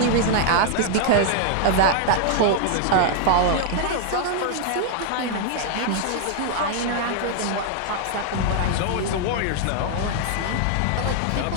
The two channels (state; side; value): different; both; correlation 0.00